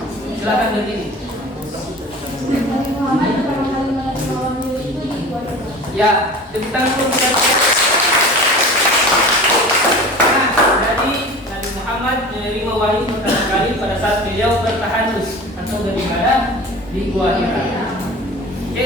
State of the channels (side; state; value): both; normal; correlation 0.37